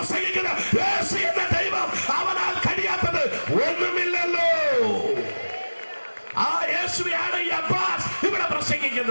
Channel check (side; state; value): both; inverted; correlation -1.00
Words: യേശു എന്ന ദൈവം, അവനാൽ കഴിയാത്തത് ഒന്നുമില്ലല്ലോ. ആ യേശുവാണ് ഈ അബ്ബാസ് ഇവിടെ